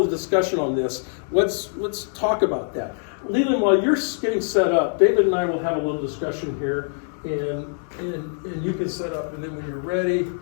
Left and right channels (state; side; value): silent; right; digital silence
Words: of the discussion on this, let's talk about that. Leland, while you're getting set up, David and I will have a little discussion here, and you can set up, and then when you're ready,